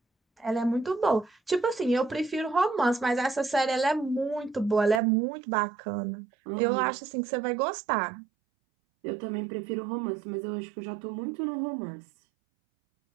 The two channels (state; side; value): drops out; left; at 5.0 s